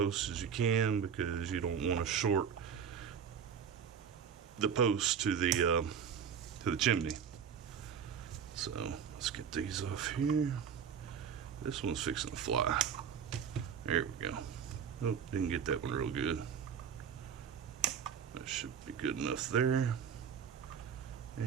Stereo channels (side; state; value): left; quieter; 7.4 dB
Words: as you can, because you don't want to short the post to the chimney. So let's get these off here. This one's fixing to fly. There we go. Nope, didn't get that one real good. That should be good enough there.